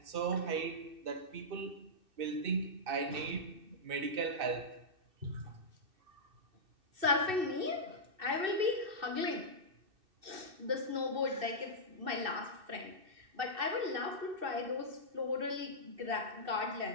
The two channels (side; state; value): left; late; 2.6 ms